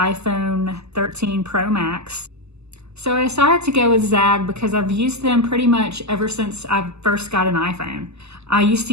13 Pro Max. So I decided to go with Zagg because I've used them pretty much ever since I first got an iPhone. I used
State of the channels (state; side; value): late; left; 0.79 ms